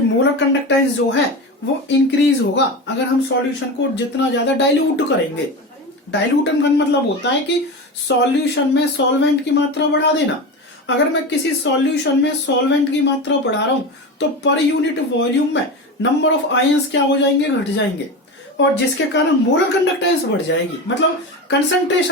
मोलर कंडक्टेंस जो है वो इंक्रीज होगा अगर हम सॉल्यूशन को जितना ज्यादा डाइल्यूट करेंगे। डाइल्यूटन का मतलब होता है कि सॉल्यूशन में सॉल्वेंट की मात्रा बढ़ा देना। अगर मैं किसी सॉल्यूशन में सॉल्वेंट की मात्रा बढ़ा रहा हूं तो पर यूनिट वॉल्यूम में नंबर ऑफ आयंस क्या हो जाएंगे, घट जाएंगे, और जिसके कारण मोलर कंडक्टेंस बढ़ जाएगी, मतलब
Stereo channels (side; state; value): both; normal; correlation 0.24